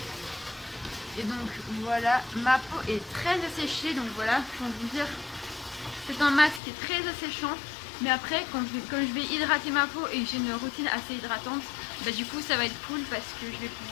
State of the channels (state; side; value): drops out; right; at 6.6 s